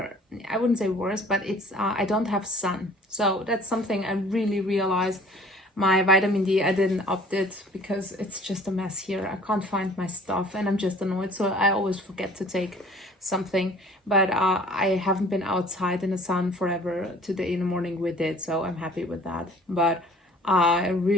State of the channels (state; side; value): normal; both; correlation 0.51